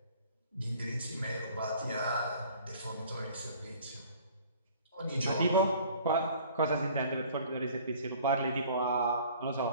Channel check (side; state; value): both; inverted; correlation -0.51